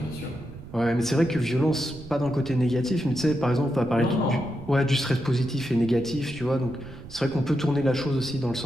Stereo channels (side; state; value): right; noise; rumble, 16 dB below the sound